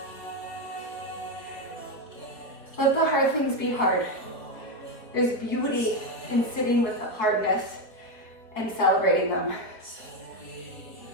Let the hard things be hard. There's beauty in sitting with the hardness and celebrating them.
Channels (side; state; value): right; late; 4.6 ms